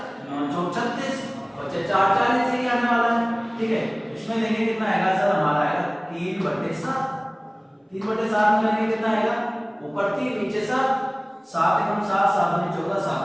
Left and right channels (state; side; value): identical; both; correlation 1.00